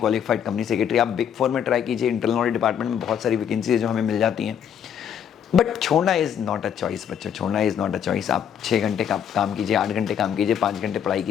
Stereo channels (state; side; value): quieter; right; 8.7 dB